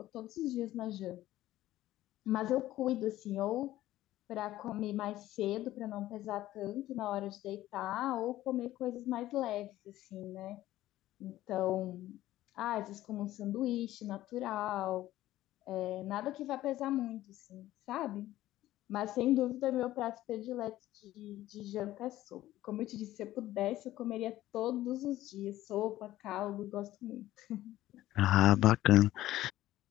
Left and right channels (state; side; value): quieter; right; 14.9 dB